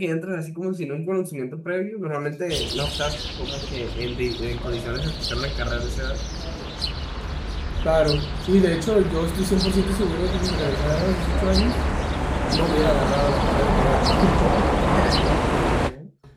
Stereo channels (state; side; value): identical; both; correlation 1.00